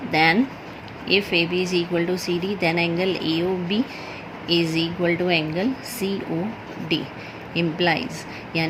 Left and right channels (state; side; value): identical; both; correlation 1.00